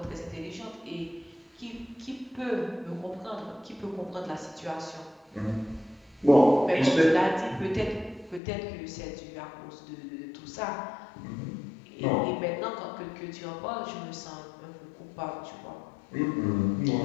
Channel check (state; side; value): drops out; right; at 8.4 s